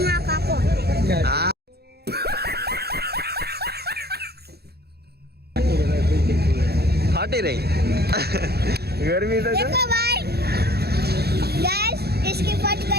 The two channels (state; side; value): late; left; 0.47 ms